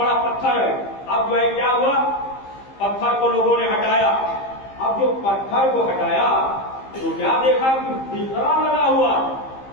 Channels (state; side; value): late; right; 15 ms